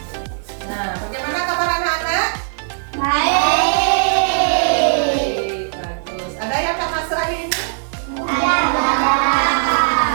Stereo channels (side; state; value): left; silent; 66 dB below the other